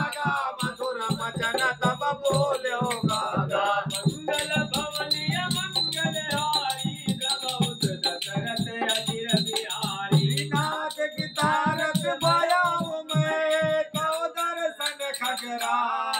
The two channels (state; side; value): identical; both; correlation 1.00